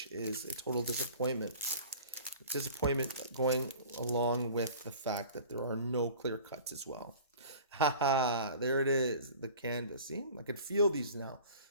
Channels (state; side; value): inverted; both; correlation -0.44